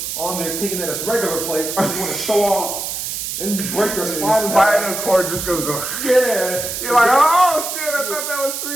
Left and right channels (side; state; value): right; noise; hiss, 4 dB below the sound